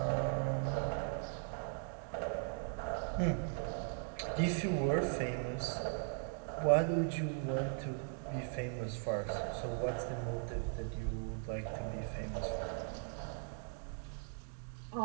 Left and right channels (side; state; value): left; silent; 52 dB below the other